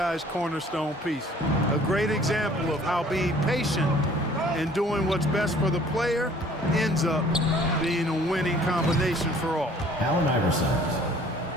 cornerstone piece. A great example of how being patient and doing what's best for the player ends up being a winning combination for all. Allen Iverson,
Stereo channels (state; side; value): normal; both; correlation 0.54